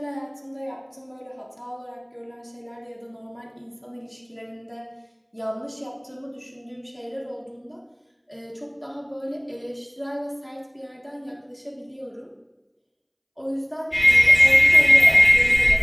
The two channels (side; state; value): both; identical; correlation 1.00